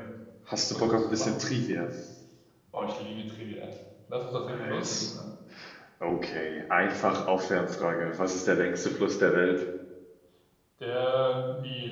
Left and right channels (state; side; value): identical; both; correlation 1.00